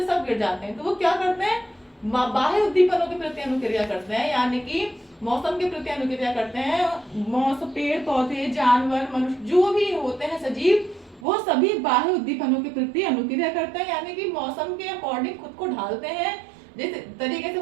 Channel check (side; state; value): left; drops out; at 11.2 s